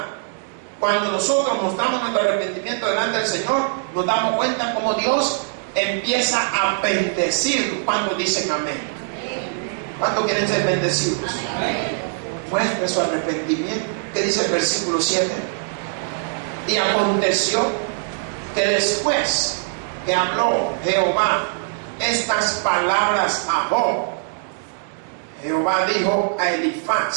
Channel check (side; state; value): left; silent; 63 dB below the other